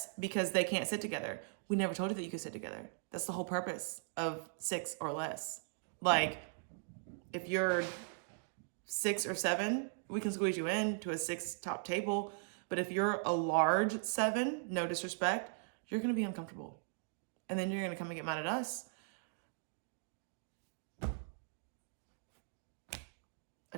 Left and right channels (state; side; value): silent; left; digital silence